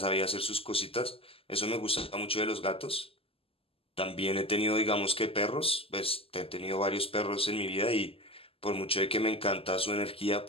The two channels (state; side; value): late; right; 0.27 ms